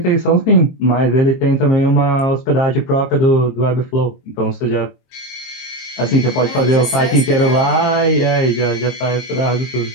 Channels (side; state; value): right; late; 22 ms